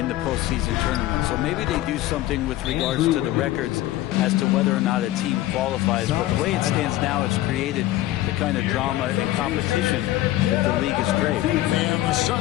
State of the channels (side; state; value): right; quieter; 15.5 dB